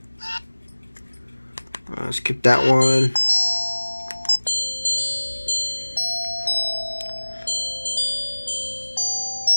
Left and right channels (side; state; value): both; inverted; correlation -1.00